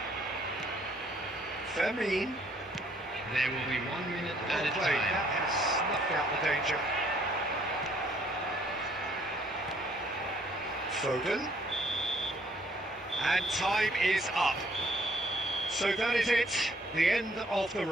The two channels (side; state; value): both; normal; correlation 0.63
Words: Fermin. There will be 1 minute at a Well played. time. That has snuffed out the danger. Foden. And time is up. So that is it, the end of the